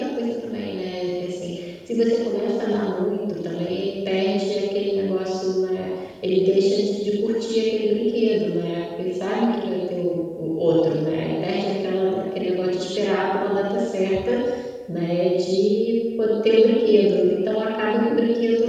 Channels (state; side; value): identical; both; correlation 1.00